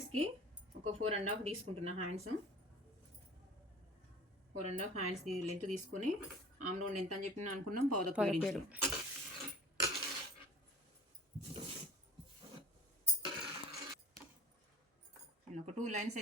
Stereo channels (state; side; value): normal; both; correlation 0.42